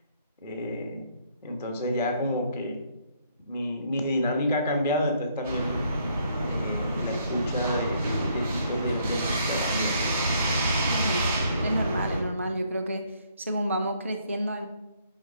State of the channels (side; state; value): both; inverted; correlation -0.68